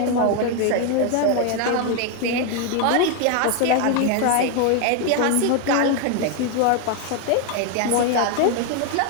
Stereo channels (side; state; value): both; different; correlation 0.01